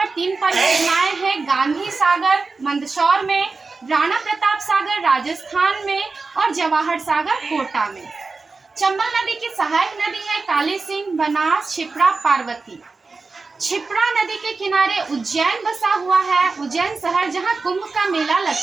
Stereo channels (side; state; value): left; quieter; 4.1 dB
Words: 3 परियोजनाएं हैं: गांधी सागर मंदसौर में, राणा प्रताप सागर राजस्थान में और जवाहर सागर कोटा में। चंबल नदी की सहायक नदी है काली सिंह, बनास, छिप्रा, पार्वती। छिप्रा नदी के किनारे उज्जैन बसा हुआ है, उज्जैन शहर, जहां कुंभ का मेला